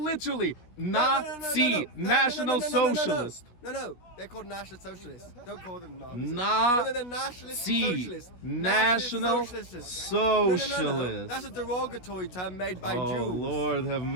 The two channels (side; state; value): right; late; 16 ms